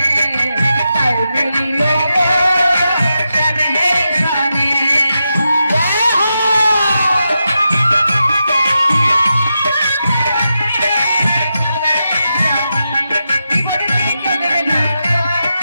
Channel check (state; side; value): inverted; both; correlation -0.88